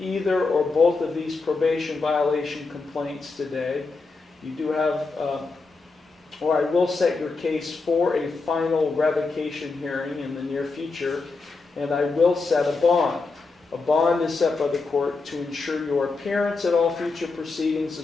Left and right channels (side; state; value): right; quieter; 4.0 dB